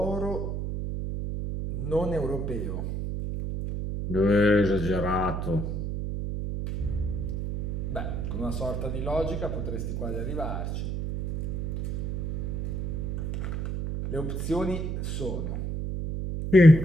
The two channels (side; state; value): right; noise; hum, 3 dB below the sound